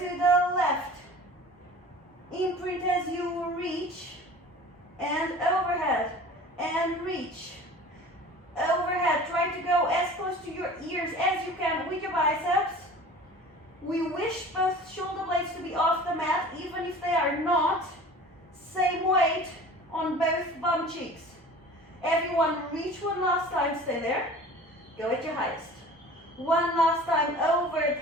the left. Imprint as you reach. And overhead. And reach. Overhead. Try to go as close to your ears as you can with your biceps. We wish both shoulder blades to be off the mat, even if they are not. Same weight on both bum cheeks. Everyone reach one last time, stay there. Go at your highest. One last time,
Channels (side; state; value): both; normal; correlation 0.42